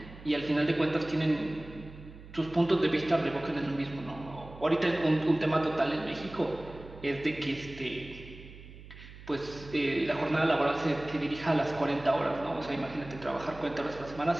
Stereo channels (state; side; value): noise; right; hum, 17 dB below the sound